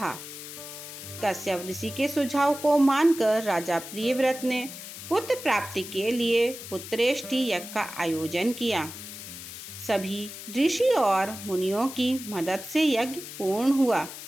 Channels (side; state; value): left; noise; hiss, 11 dB below the sound